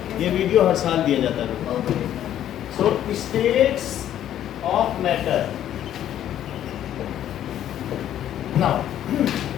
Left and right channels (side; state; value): right; quieter; 11.2 dB